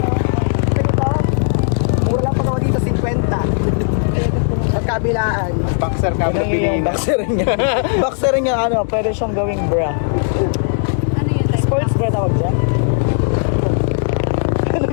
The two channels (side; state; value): right; silent; digital silence